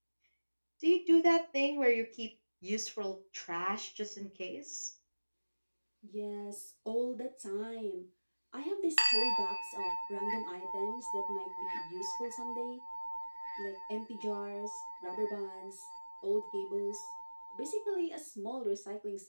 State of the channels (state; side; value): inverted; both; correlation -1.00